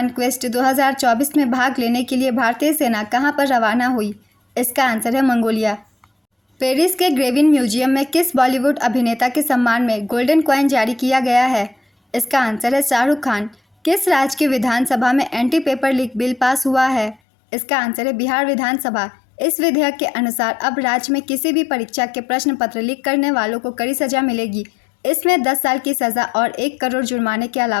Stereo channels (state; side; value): drops out; right; at 17.2 s